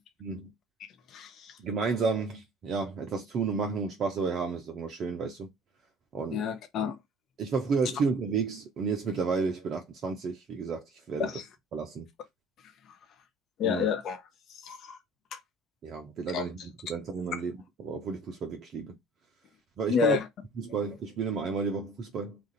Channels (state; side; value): normal; both; correlation 0.48